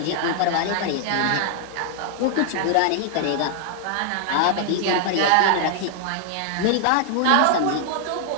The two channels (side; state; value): both; different; correlation 0.00